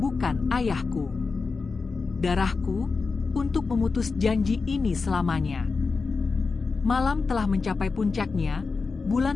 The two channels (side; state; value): right; quieter; 4.4 dB